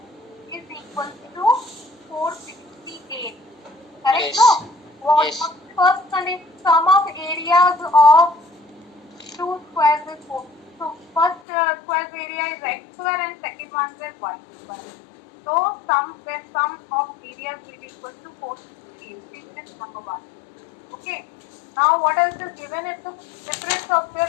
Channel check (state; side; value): drops out; right; at 11.4 s